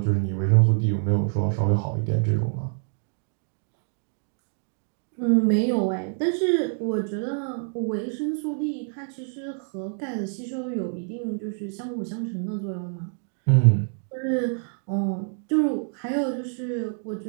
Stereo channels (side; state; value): left; silent; 61 dB below the other